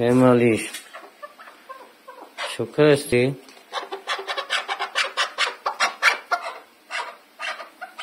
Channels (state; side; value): identical; both; correlation 1.00